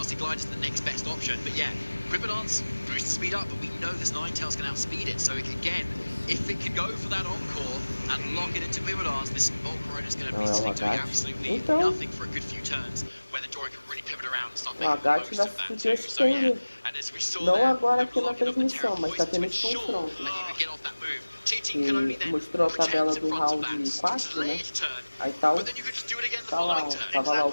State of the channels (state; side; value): inverted; both; correlation -1.00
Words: Glide is the next best option. But yeah, Quiver Dance boosts the speed up, but we know this Ninetales can outspeed it. So again, if it can go for that encore and lock it into Quiver Dance, this Volcarona is going to be sitting doing absolutely nothing for a good few turns, where the Dorian can really pivot around and start making the most of that too. So yeah, and as we saw there, agora the aqui na blocking of the Terra transmissão, mas tá Poison to tendo esse ensure confronto. that you can get off that move. Que mostrou a tabela do round 4, né? Aí tá o... Tá lá, tava lá o